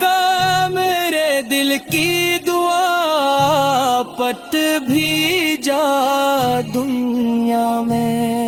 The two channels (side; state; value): both; identical; correlation 1.00